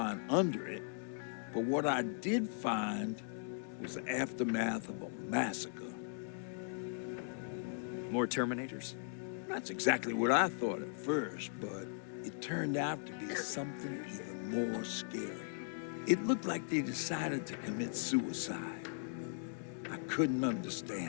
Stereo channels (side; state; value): right; silent; digital silence